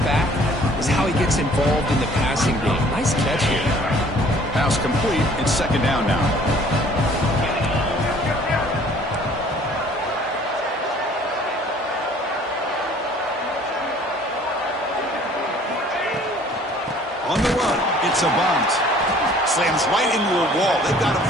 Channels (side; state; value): both; normal; correlation 0.54